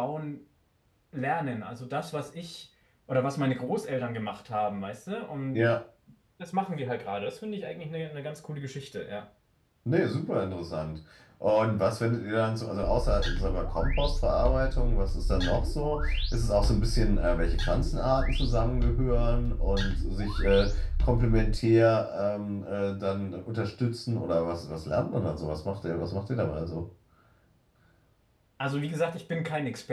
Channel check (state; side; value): identical; both; correlation 1.00